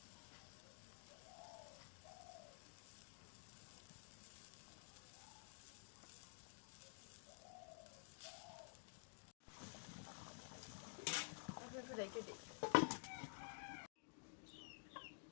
একটু রেখে দিই।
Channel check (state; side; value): silent; right; digital silence